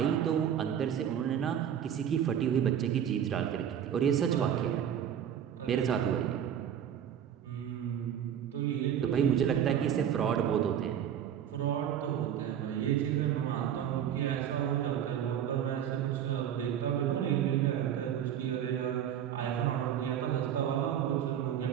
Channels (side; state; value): left; quieter; 9.4 dB